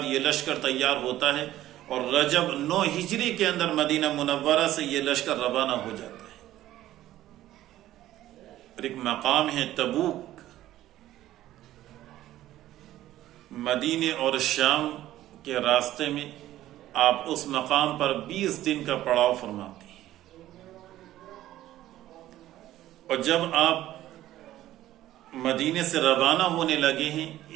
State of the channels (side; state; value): left; quieter; 14.1 dB